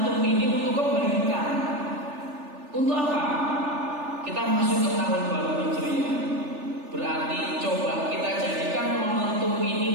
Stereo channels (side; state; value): left; late; 3.4 ms